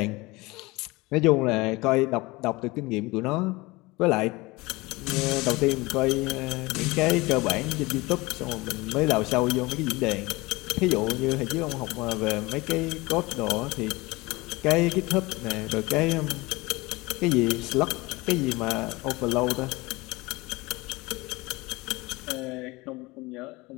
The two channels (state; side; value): quieter; right; 22.6 dB